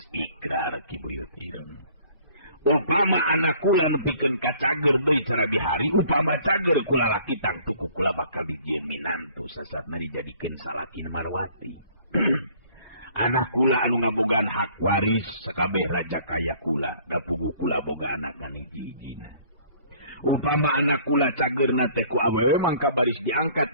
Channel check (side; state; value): both; inverted; correlation -0.55